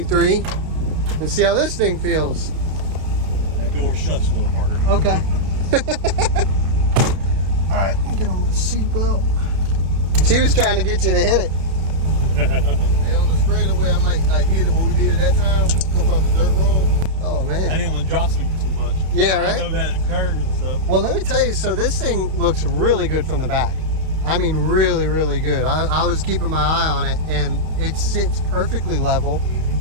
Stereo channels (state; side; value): late; left; 32 ms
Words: and see how this thing feels. That door shuts a little harder. Okay. All right, let me get on my seatbelt. She was trying to get you to hit it. Yeah, on the straightaway, I might like hit it what we did at that time. Come off the dirt road. Oh man. I didn't want to jostle you too much. Yeah, right. I know that curve and stuff. Well, let me tell you. So this thing looks really good from the back. I mean, really, really good. I was keeping my eye on it, and it sits perfectly level.